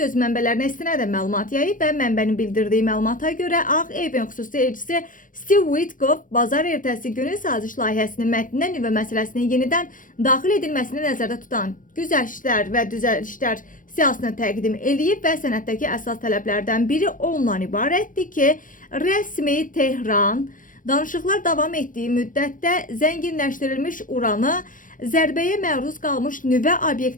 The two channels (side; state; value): right; late; 0.39 ms